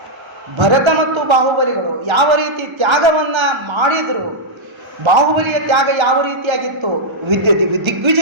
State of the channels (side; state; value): left; late; 1.3 ms